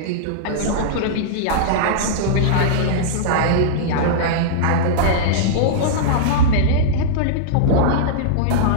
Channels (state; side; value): different; both; correlation -0.03